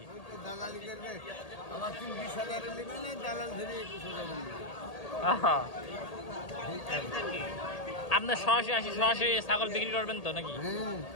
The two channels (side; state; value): right; late; 1.8 ms